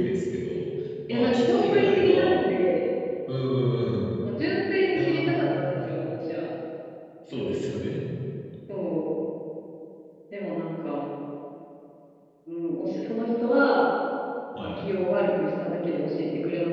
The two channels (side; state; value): both; identical; correlation 1.00